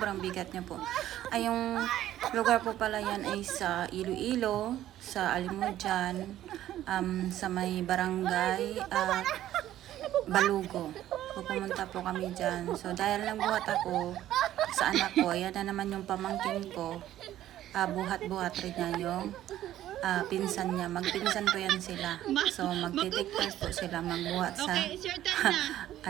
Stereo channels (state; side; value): quieter; left; 13.0 dB